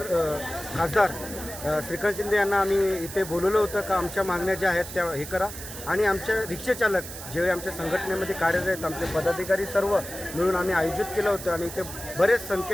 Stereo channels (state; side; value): noise; right; hiss, 11 dB below the sound